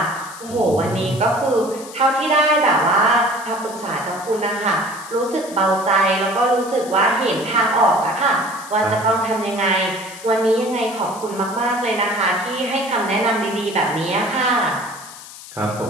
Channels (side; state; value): left; noise; hiss, 16 dB below the sound